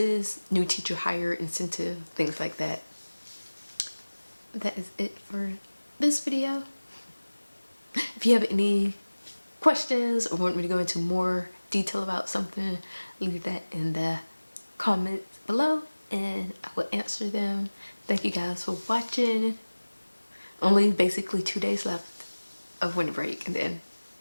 new teacher hire incentive, things like that. That is it for this video. If you have any questions or want me to go into more detail about something, leave that in the comments below and I will answer them. Thank you guys for watching. Only basically 2 days left of winter break and then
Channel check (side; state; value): both; inverted; correlation -1.00